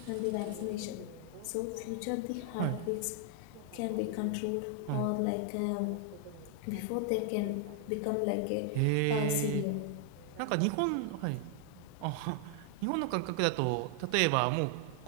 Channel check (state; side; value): different; both; correlation 0.00